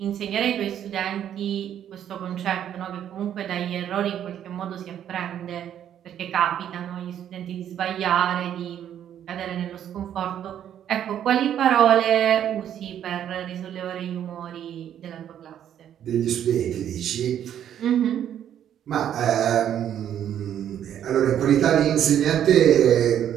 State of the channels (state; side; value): quieter; left; 10.1 dB